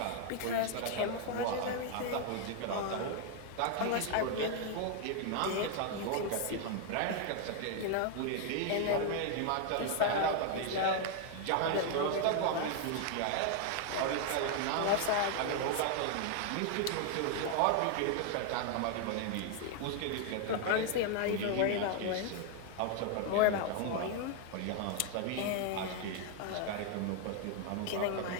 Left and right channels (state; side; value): different; both; correlation 0.00